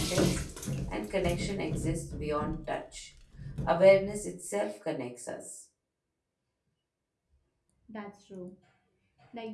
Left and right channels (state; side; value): identical; both; correlation 1.00